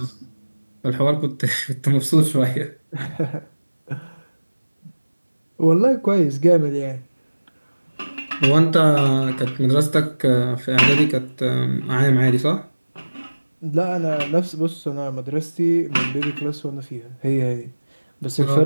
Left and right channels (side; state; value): both; inverted; correlation -1.00